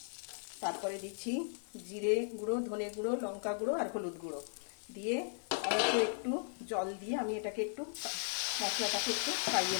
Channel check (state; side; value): silent; right; digital silence